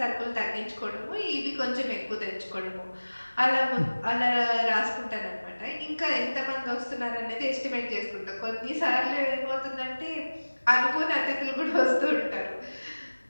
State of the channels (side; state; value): both; inverted; correlation -1.00